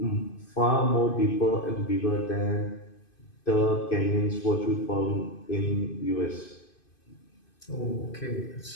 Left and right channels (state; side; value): late; right; 2.5 ms